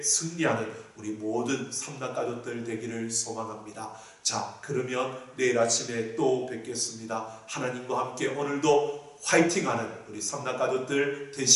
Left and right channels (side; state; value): both; identical; correlation 1.00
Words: 승리하는 우리 모든 삼단가족들 되기를 소망합니다. 자, 그러면 내일 아침에 또 뵙겠습니다. 하나님과 함께 오늘도 화이팅하는 우리 삼단가족들